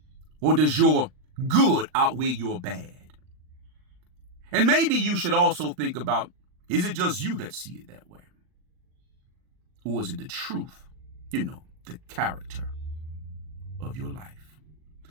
Or does your good outweigh your bad? And maybe you should also think about, is it just you that see it that way? Or is it the truth, the character of your life?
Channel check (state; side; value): late; left; 39 ms